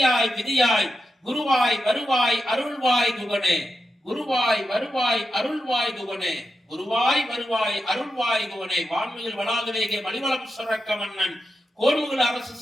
விதியாய் குருவாய் வருவாய் அருள்வாய் குகனே குருவாய் வருவாய் அருள்வாய் குகனே குருவாய் வருவாய் அருள்வாய் குகனே வான்மையில் வளாதுவேக மலிவளம் சுரக்க மன்னன் கோன்முகில் அரசு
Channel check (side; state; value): both; normal; correlation 0.88